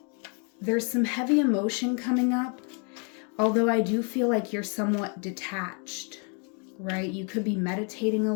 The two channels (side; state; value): right; quieter; 38.0 dB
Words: There's some heavy emotion coming up, although I do feel like you're somewhat detached, right? You could be meditating a